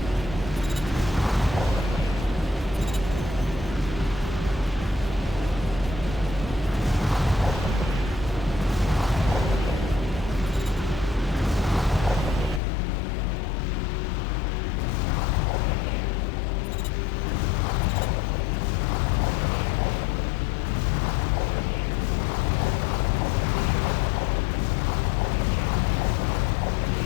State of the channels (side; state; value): right; drops out; at 12.6 s